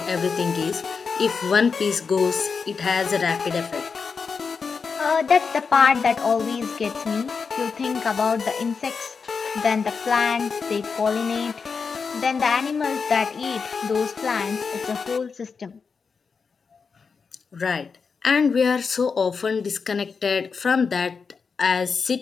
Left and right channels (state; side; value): quieter; right; 5.4 dB